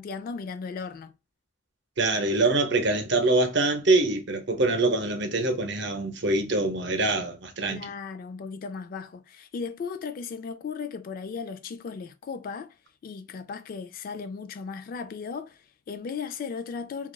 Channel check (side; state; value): both; normal; correlation 0.23